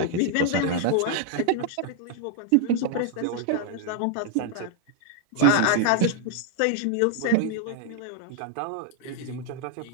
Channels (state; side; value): different; both; correlation 0.00